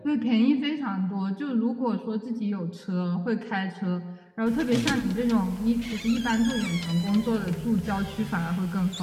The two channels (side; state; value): both; identical; correlation 1.00